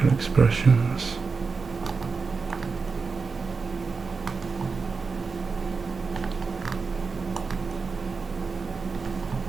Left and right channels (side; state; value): left; quieter; 4.7 dB